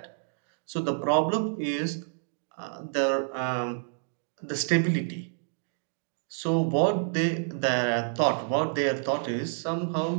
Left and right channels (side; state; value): left; silent; digital silence